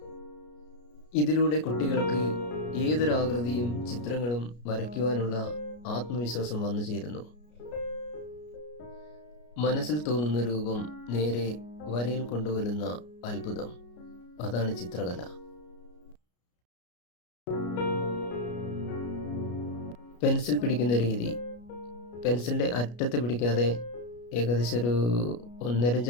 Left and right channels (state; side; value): late; right; 33 ms